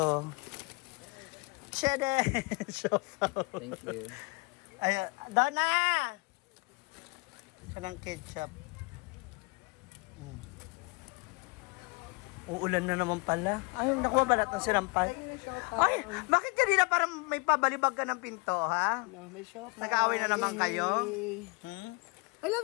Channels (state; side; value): quieter; right; 29.3 dB